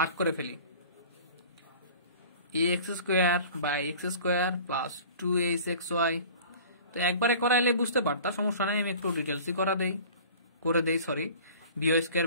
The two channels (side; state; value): both; inverted; correlation -0.43